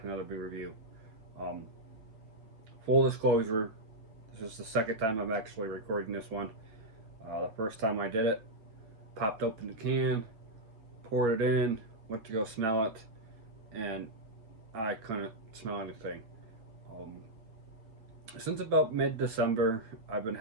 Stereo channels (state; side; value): late; left; 9.0 ms